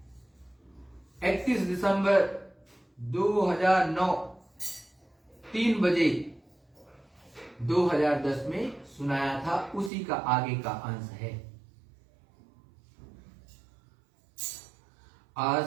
31 दिसंबर 2009 3 बजे 2010 में सुनाया था, उसी का आगे का अंश है।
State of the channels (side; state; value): left; drops out; at 9.9 s